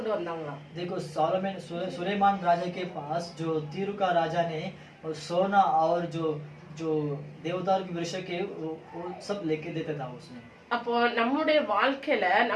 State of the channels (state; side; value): identical; both; correlation 1.00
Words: வந்தாங்களாம். देखो सुलेमान राजा के पास जो तीरू का राजा ने सोना और जो जो देवदार के वृक्ष के वो सब लेके देता था उसने। அப்போ நம்முடைய வாழ்க்கையில